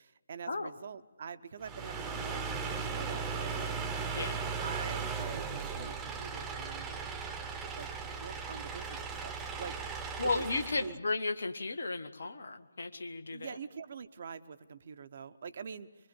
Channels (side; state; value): both; inverted; correlation -0.49